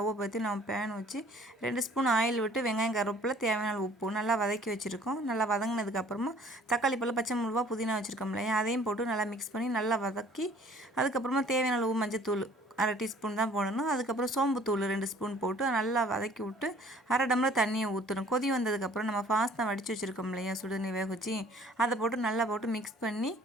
பற்றி நம்ம பேன் வச்சு 2 ஸ்பூன் ஆயில் விட்டு வெங்காயம், கருவேப்பிலை, தேவையான உப்பு நல்லா வதக்கி வச்சுருக்கோம். நல்லா வதங்கினதுக்கப்புறமா தக்காளி பழம், பச்சை மிளகா, புதினா வச்சுருக்கோம் இல்லையா, அதையும் போட்டு நல்லா மிக்ஸ் பண்ணி நல்லா வதக்கி அதுக்கப்புறமா தேவையான அளவு மஞ்சத்தூள் 1/2 டீஸ்பூன் தான் போடணும். அதுக்கப்புறம் சோம்புத்தூள் 2 ஸ்பூன் போட்டு நல்லா வதக்கி விட்டு 1/2 டம்ளர் தண்ணியை ஊற்றணும். கொதி வந்ததுக்கப்புறம் நம்ம ஃபாஸ்தா வடித்து வச்சுருக்கோம் இல்லையா, சுடுதண்ணி வேக வச்சு அதை போட்டு நல்லா போட்டு மிக்ஸ் பண்ணி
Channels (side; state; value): both; normal; correlation 0.54